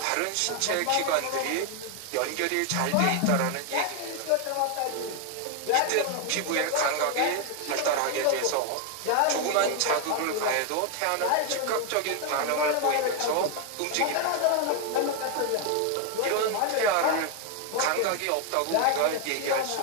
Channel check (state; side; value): different; both; correlation 0.01